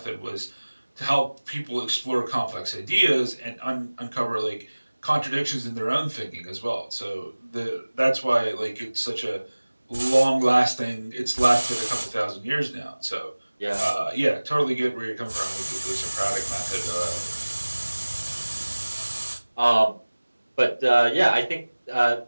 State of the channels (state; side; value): inverted; both; correlation -1.00